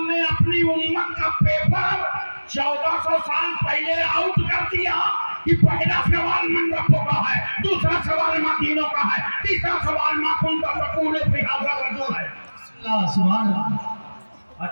ने अपनी उम्मत का पेपर 1400 साल पहले आउट कर दिया कि पहला सवाल मन रब्बों का है, दूसरा सवाल माँ दीनों का है, तीसरा सवाल माँ कुंता तकूल फी हाज़ा रजूल है। सुभान अल्लाह।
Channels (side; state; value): both; inverted; correlation -1.00